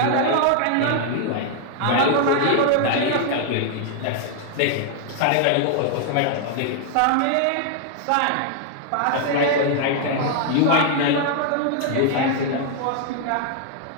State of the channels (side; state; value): both; different; correlation 0.00